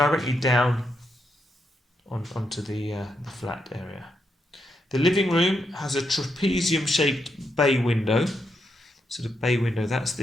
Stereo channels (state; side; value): normal; both; correlation 0.81